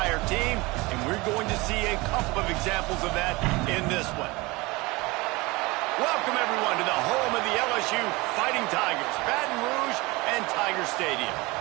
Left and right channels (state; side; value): quieter; left; 23.4 dB